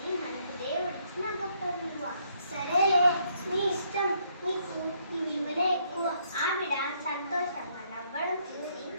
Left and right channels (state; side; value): inverted; both; correlation -0.71